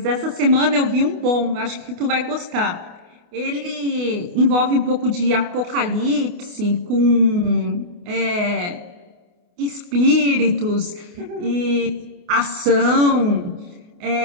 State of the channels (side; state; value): left; late; 28 ms